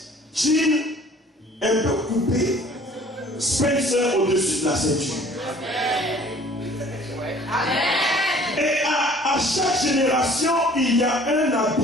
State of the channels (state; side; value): normal; both; correlation 0.52